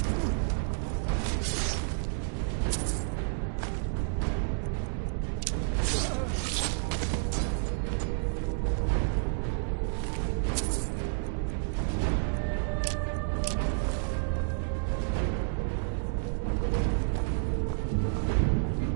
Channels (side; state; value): left; silent; digital silence